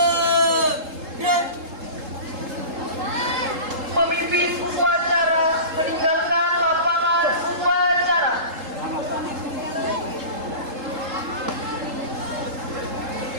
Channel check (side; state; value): left; late; 3.7 ms